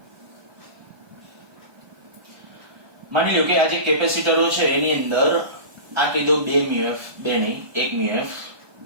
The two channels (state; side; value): late; left; 1.2 ms